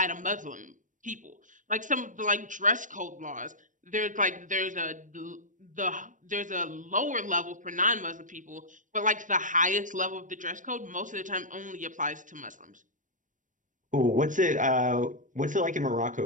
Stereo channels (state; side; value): late; left; 0.37 ms